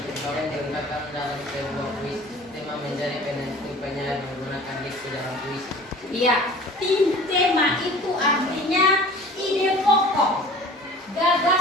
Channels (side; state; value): both; normal; correlation 0.44